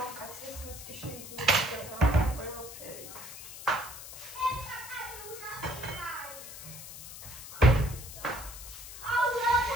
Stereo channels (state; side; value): noise; left; hiss, 12 dB below the sound